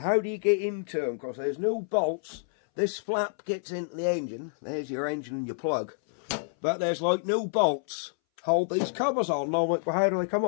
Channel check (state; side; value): silent; right; 59 dB below the other